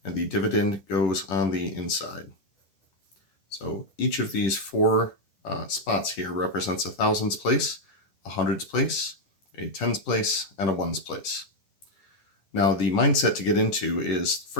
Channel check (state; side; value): late; right; 10 ms